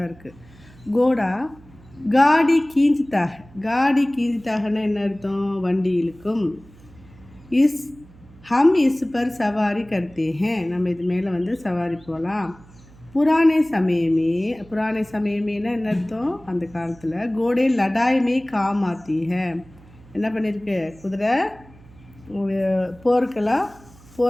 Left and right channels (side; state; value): right; noise; hum, 24 dB below the sound